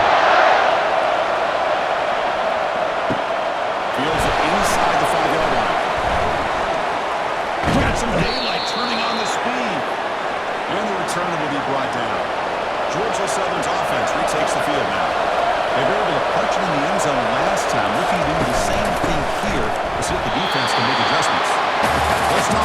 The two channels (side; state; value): both; identical; correlation 1.00